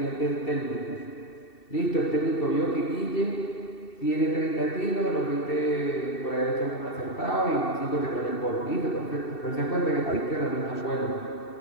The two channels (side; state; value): right; late; 2.7 ms